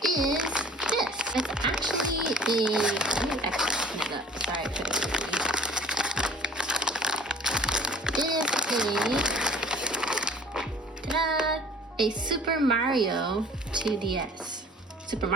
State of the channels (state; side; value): normal; both; correlation 0.49